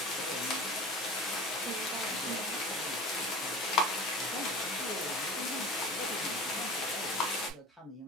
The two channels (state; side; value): normal; both; correlation 0.37